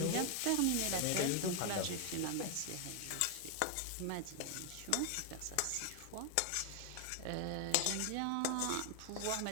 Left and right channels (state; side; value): different; both; correlation 0.00